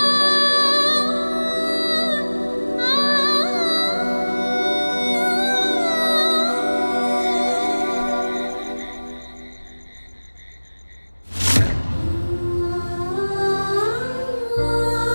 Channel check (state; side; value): inverted; both; correlation -1.00